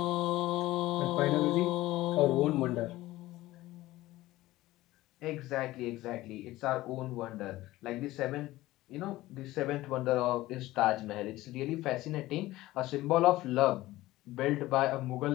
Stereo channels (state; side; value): quieter; right; 17.2 dB